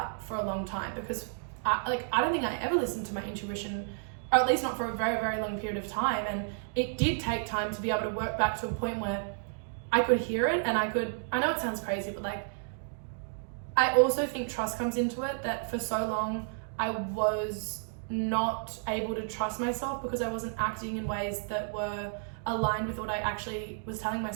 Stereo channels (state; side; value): silent; left; digital silence